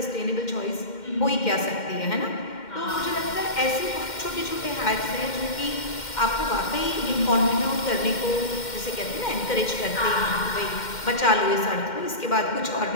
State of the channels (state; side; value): late; right; 2.1 ms